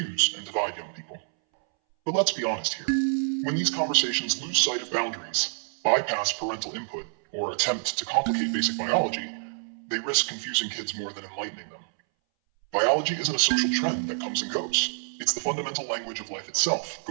and divide young people? But let's be honest here. When these conversations lose sight of boundaries, bypass parental input, or attempt to complicate basic biology, they risk confusing kids more than enlightening them. Biology isn't a social trend that comes and goes. It's the fundamental language of life itself,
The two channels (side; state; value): left; silent; 60 dB below the other